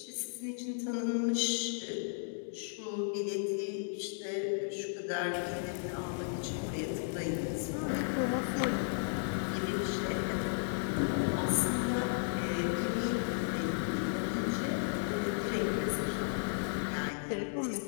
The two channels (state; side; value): silent; right; digital silence